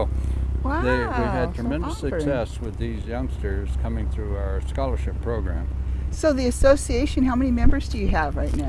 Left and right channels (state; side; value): identical; both; correlation 1.00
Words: we've had tremendous success with these youngsters coming through our scholarship program. So the association, how many members do you have right now,